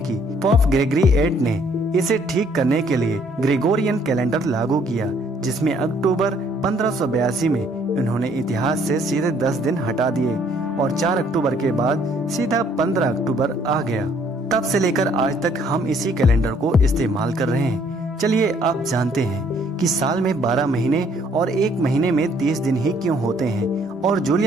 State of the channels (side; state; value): both; normal; correlation 0.63